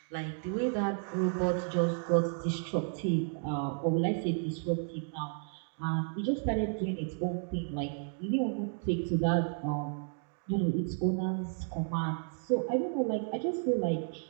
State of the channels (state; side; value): silent; left; 55 dB below the other